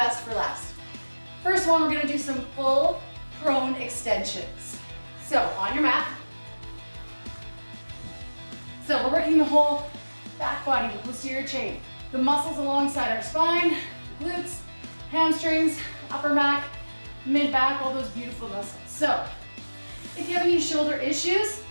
for last. First one, we're gonna do some full prone extensions. So on your mat. So we're working the whole back body, the posterior chain. The muscles alongside our spine, glutes, hamstrings, upper back, mid back, all those beautiful muscles. So if you have any shoulder issues,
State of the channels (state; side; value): inverted; both; correlation -1.00